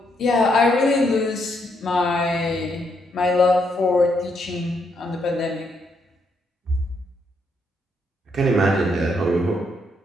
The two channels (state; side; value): normal; both; correlation 0.76